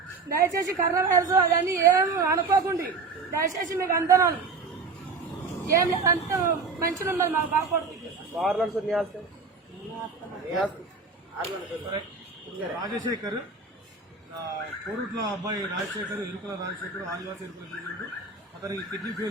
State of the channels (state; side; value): quieter; left; 4.5 dB